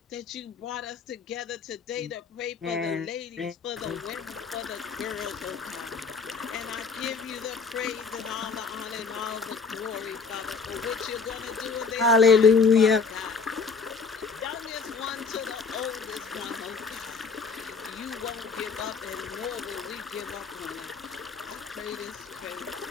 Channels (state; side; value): quieter; right; 5.0 dB